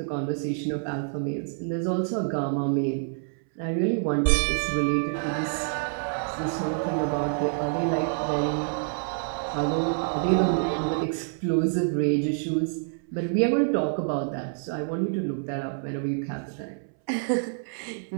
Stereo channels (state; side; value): silent; left; 60 dB below the other